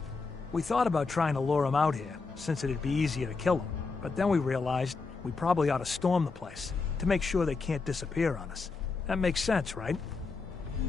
We thought about trying to lure him out here, since it'd be easier to kill him. But then we realized we probably ought to storm the place, to make sure they can't disappear on us. That makes sense, right?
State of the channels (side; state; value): right; quieter; 4.3 dB